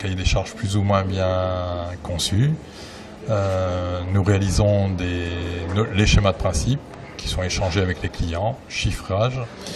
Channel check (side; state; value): both; identical; correlation 1.00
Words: des charges plus ou moins bien conçus. Nous réalisons les schémas de principe qui sont échangés avec les clients, chiffrage,